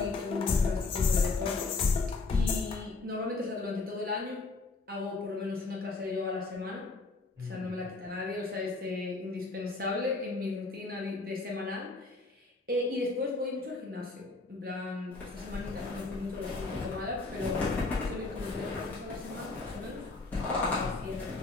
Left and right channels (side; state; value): right; quieter; 3.7 dB